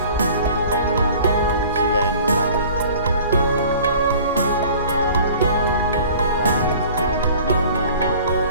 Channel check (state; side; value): inverted; both; correlation -0.47